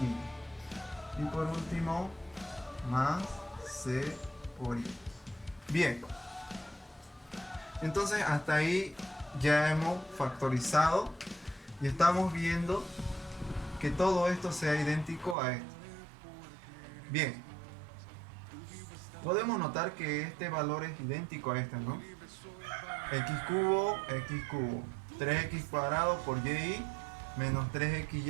Y por último más c por y. Bien, entonces hasta ahí ya hemos factorizado y estamos viendo que todo esto sea idéntico a esto. Bien, podemos notar que este valor es idéntico a este, ¿no? X cubo, 3x cuadrado por y menos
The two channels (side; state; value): left; drops out; at 15.4 s